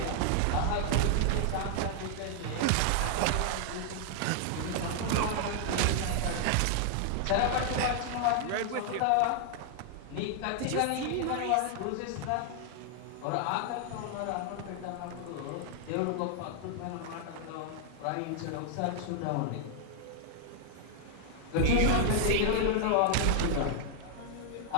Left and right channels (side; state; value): both; different; correlation 0.00